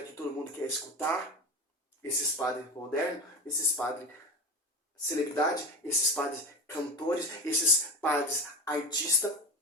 que todo mundo quer escutar, esses padres modernos, esses padres celebridade, esses padres cantores, esses padres artistas,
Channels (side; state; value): both; normal; correlation 0.26